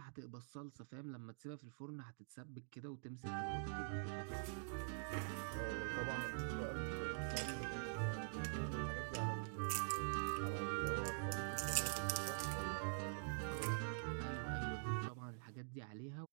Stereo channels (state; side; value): silent; left; digital silence